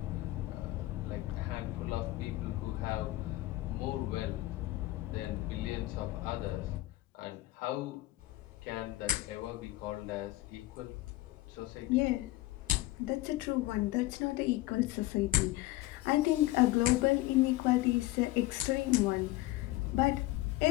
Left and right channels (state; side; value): quieter; right; 17.9 dB